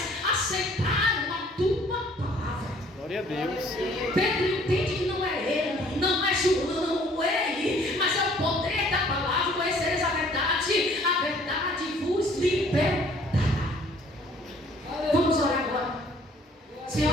aceitaram a tua palavra. Glória a Deus. Pedro entende que não é ele, não é João, ele, mas é o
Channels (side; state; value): both; normal; correlation 0.57